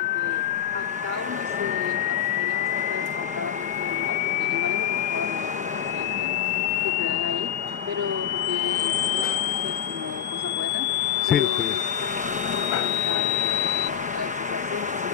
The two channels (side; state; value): right; quieter; 9.4 dB